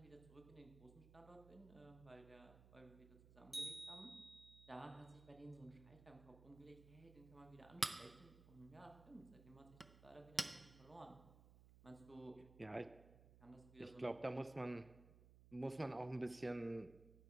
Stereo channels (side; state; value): right; noise; hum, 17 dB below the sound